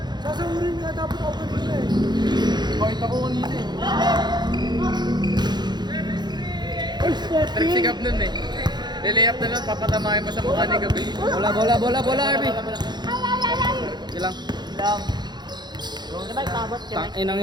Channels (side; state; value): left; late; 0.21 ms